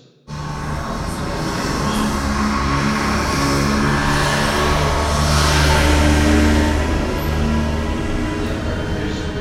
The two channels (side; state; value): both; identical; correlation 1.00